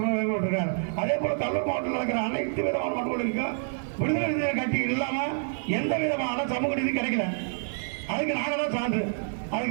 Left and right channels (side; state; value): left; silent; digital silence